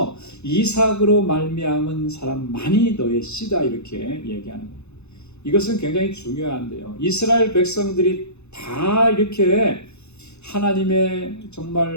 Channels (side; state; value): right; late; 0.81 ms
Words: 이삭으로 말미암은 사람만이 너의 씨다 이렇게 얘기하는 거예요. 이것은 굉장히 중요한데요. 이스라엘 백성들이 다 이렇게 하나님의